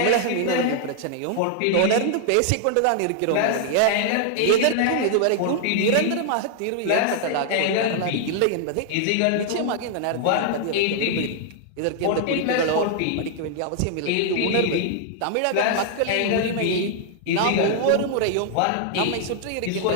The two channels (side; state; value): both; different; correlation 0.00